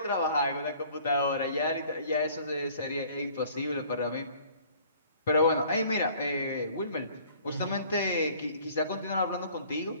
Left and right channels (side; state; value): both; inverted; correlation -0.54